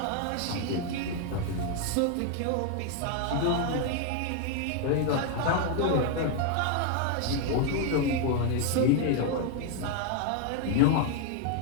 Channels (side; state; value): both; different; correlation 0.01